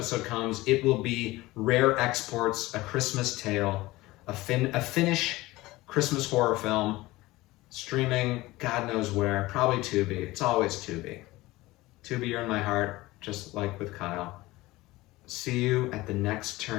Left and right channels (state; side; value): quieter; right; 19.3 dB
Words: comes, it will be Rare Exports, A Christmas Tale, a Finnish Christmas horror film, streaming God knows where, probably Tubi. It's always Tubi. Tubi, you're in my heart, just like with Kyle. See you at the next